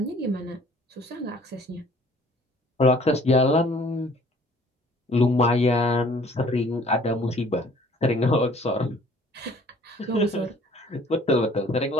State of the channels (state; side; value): normal; both; correlation 0.55